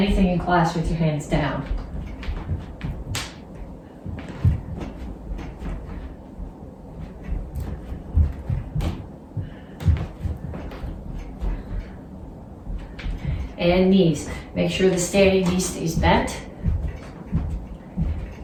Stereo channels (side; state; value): both; identical; correlation 1.00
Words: in class with your hands down. And knees. Make sure the standing knee stays bent.